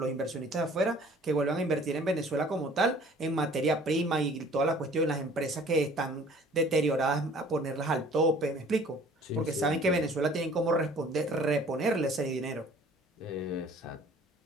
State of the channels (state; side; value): normal; both; correlation 0.52